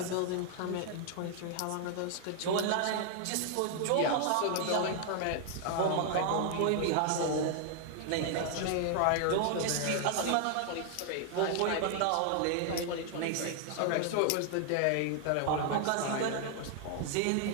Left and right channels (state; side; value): different; both; correlation 0.00